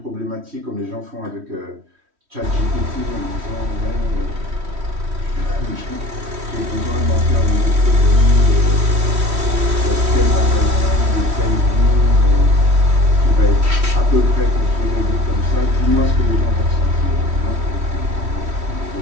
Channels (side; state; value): left; late; 3.1 ms